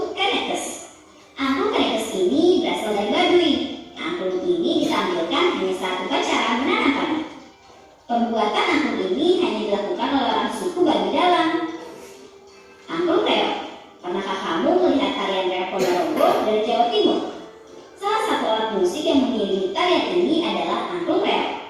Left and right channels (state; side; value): identical; both; correlation 1.00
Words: Kanekes. Angklung Kanekes ini berasal dari Baduy. Angklung ini ditampilkan hanya saat upacara menanam padi. Pembuatan angklung ini hanya dilakukan oleh orang suku Baduy Dalam. Angklung Reok. Pernahkah kamu melihat tarian reok Ponorogo dari Jawa Timur? Salah satu alat musik yang mengiringi tarian ini adalah angklung reok.